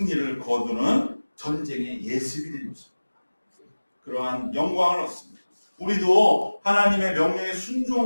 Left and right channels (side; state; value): both; inverted; correlation -1.00